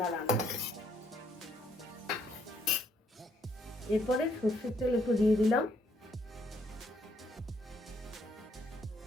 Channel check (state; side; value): normal; both; correlation 0.69